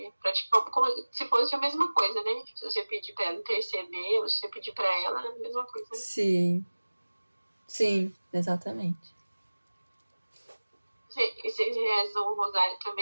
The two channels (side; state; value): both; inverted; correlation -1.00